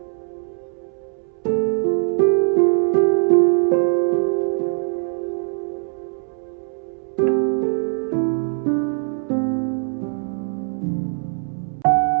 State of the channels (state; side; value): silent; left; 65 dB below the other